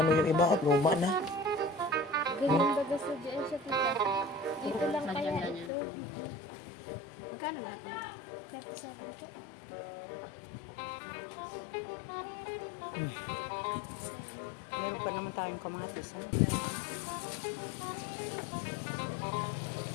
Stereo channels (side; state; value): right; drops out; at 5.7 s